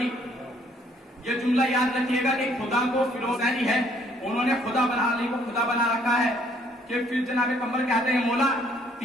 یہ جملہ یاد رکھیے گا کہ خدا کو فلوسینی ہے، انہوں نے خدا بنا علی کو خدا بنا رکھا ہے. کہ پھر جناب قمر کہتے ہیں مولا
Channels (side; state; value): both; normal; correlation 0.64